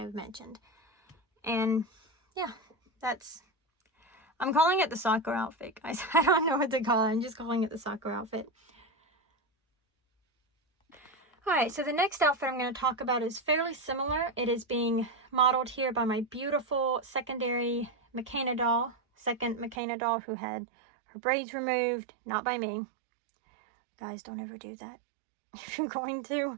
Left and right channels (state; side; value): drops out; left; at 19.8 s